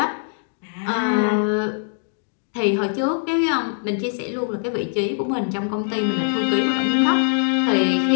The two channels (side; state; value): right; silent; digital silence